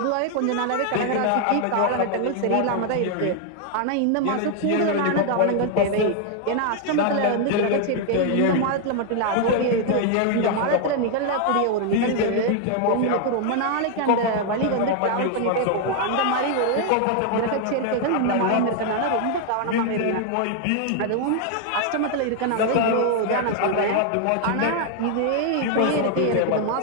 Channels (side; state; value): both; different; correlation 0.00